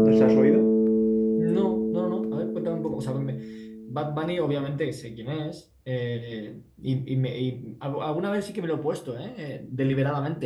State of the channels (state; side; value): identical; both; correlation 1.00